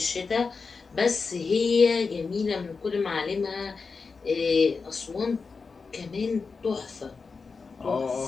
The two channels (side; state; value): right; quieter; 4.7 dB